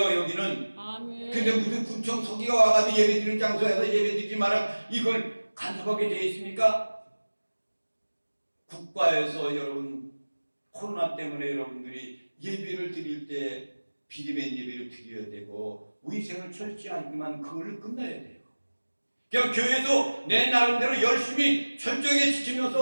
여기는. 아멘. 근데 무슨 군청 서기가 와가지고 예배 드리는 장소에서 예배 드리지 마라 이걸 간섭하게 돼 있습니까? 국가에서 여러분 코로나 때문에 여러분들이 예배를 드릴 때 비대면 예배를 드려야 되고 위생을 철저하지만 그걸로 끝나야 돼요. 그냥 교회에서 내 나름대로 열심히 철저하게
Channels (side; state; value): both; inverted; correlation -1.00